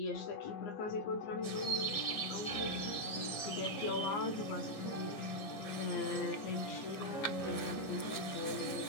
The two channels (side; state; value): right; late; 15 ms